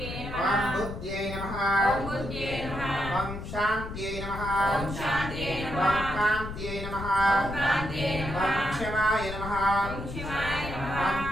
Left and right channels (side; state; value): left; noise; rumble, 8 dB below the sound